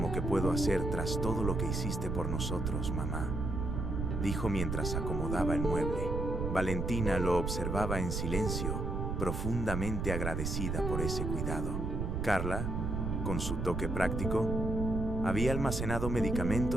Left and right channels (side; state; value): right; noise; rumble, 2 dB below the sound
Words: que puedo hacer tras todo lo que hiciste por nosotros, mamá», dijo mientras acomodaba el mueble. Valentina lo observaba en silencio, profundamente agradecida por ese cuidado. Carla, con su toque práctico, había almacenado